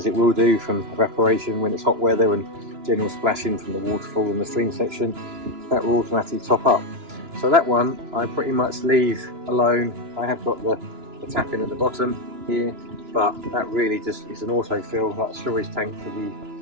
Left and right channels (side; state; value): left; late; 2.9 ms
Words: it will do from evaporation when it's hot weather and general splashing from the waterfall in the stream section, that will automatically top up. So that one I pretty much leave alone. I have got the tap in at the bottom here, but that really just is an autofill, like a storage tank for